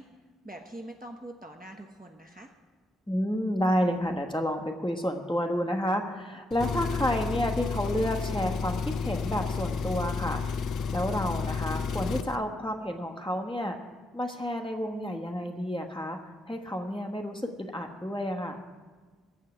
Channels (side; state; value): both; normal; correlation 0.81